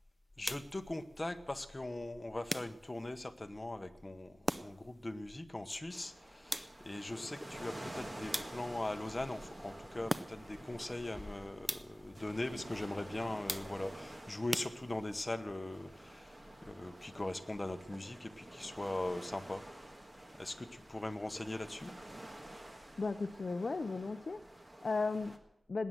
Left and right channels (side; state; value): both; normal; correlation 0.98